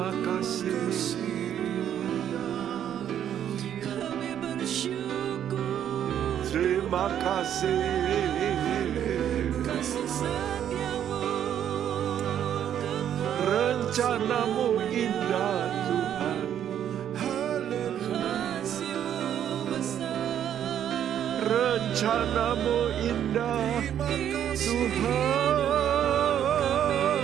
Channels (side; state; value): left; quieter; 9.9 dB